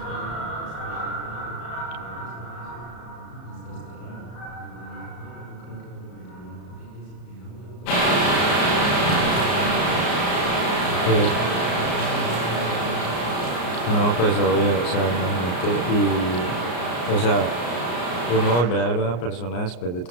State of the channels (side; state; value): right; late; 34 ms